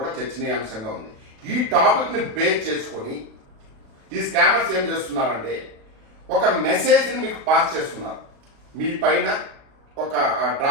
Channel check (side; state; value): left; late; 36 ms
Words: చర్చనీయాంశంగా ఉంది. ఈ టాపిక్ని బేస్ చేసుకొని ఈ స్కామర్స్ ఏం చేస్తున్నారంటే ఒక మెసేజ్ని మీకు పాస్ చేస్తున్నారు. మీ పైన ఒక